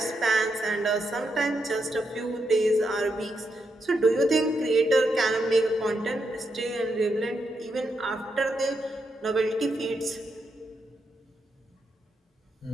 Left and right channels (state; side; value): normal; both; correlation 0.82